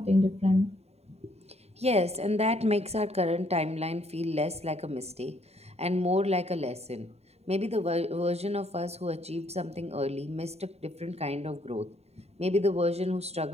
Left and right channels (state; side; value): late; left; 0.30 ms